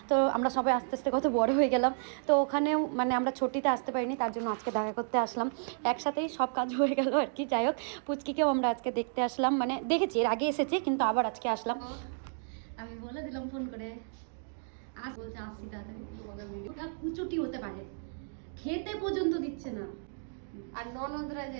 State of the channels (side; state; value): left; silent; digital silence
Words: তো আমরা সবাই আস্তে আস্তে কত বড় হয়ে গেলাম। তো ওখানেও মানে আমরা ছুটিতে আসতে পারিনি, তার জন্য আজকে দেখা করতে আসলাম। একসাথেই সব কাজ হয়ে গেল আর কি। যাই হোক, পুচকিকেও আমরা আজকে দেখতে আসলাম, মানে দেখেছি এর আগে এসেছে কিন্তু আবার আজকে আসলাম। আমি বলে দিলাম ফোন করে বলছে আসছি তাড়াতাড়ি। ওটা কুচুটি হতে পারে, খেতে পর্যন্ত দিচ্ছে না। আর ননদরা